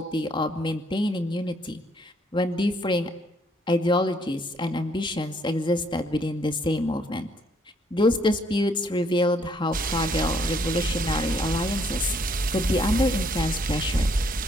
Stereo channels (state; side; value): normal; both; correlation 0.67